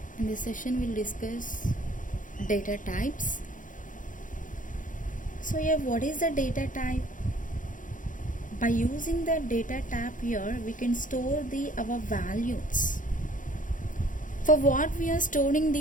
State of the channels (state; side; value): late; right; 0.38 ms